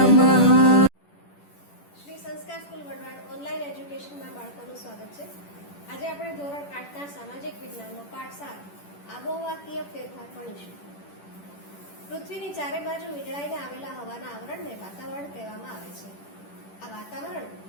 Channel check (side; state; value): right; late; 10 ms